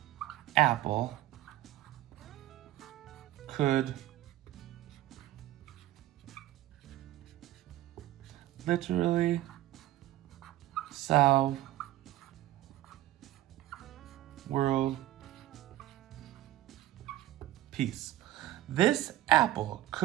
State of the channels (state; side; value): quieter; left; 15.0 dB